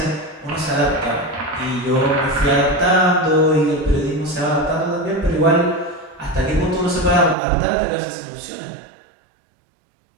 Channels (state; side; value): drops out; left; at 7.4 s